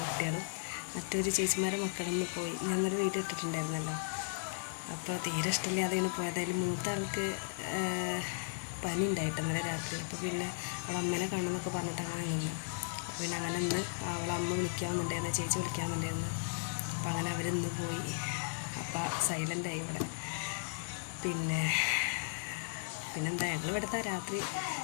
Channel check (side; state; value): right; silent; digital silence